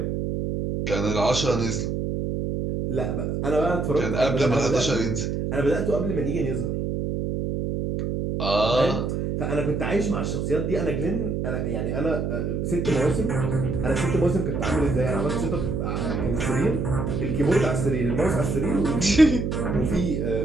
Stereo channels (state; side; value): noise; right; hum, 1 dB below the sound